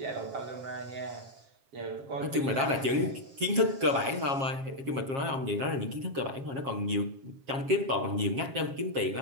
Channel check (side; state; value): left; late; 7.4 ms